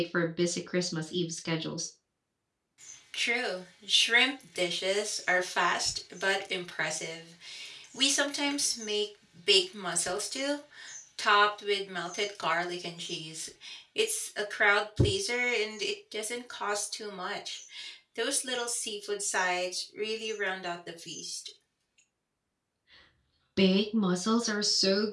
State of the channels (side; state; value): both; identical; correlation 1.00